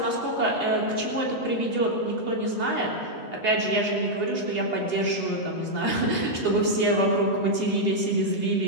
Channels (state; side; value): late; right; 8.0 ms